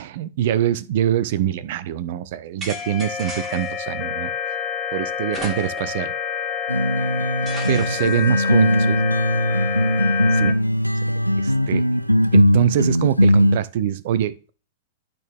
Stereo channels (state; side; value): inverted; both; correlation -0.71